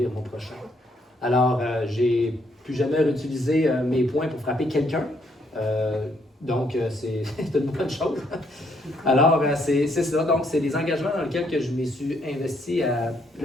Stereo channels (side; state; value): both; normal; correlation 0.71